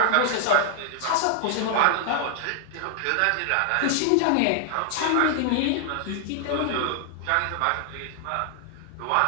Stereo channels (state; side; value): different; both; correlation 0.00